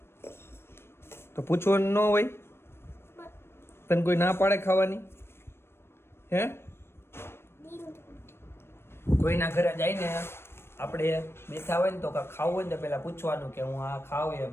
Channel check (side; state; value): right; late; 0.12 ms